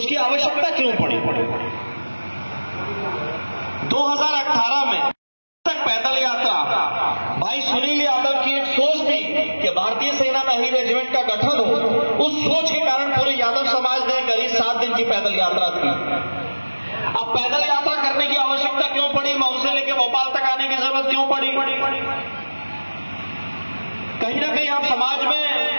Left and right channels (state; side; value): inverted; both; correlation -1.00